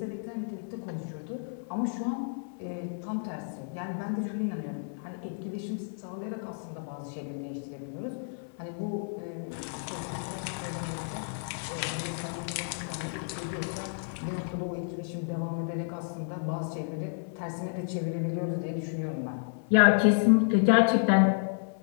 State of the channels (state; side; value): silent; right; 57 dB below the other